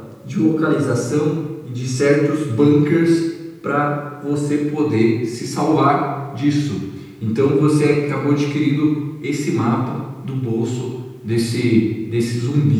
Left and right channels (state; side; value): identical; both; correlation 1.00